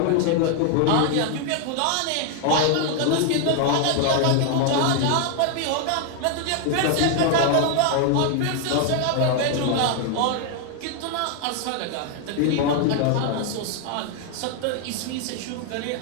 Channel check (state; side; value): different; both; correlation 0.00